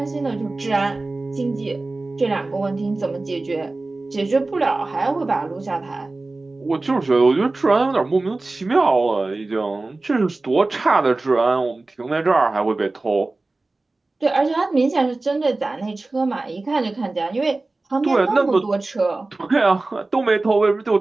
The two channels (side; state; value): left; quieter; 3.2 dB